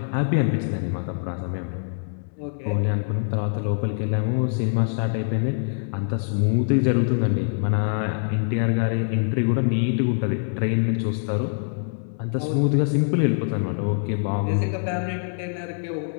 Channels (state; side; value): silent; right; 62 dB below the other